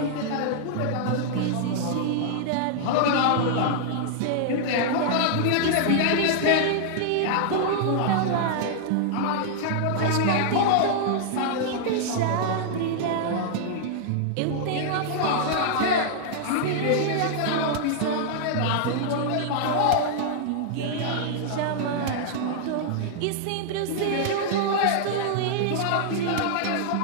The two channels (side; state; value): both; different; correlation -0.01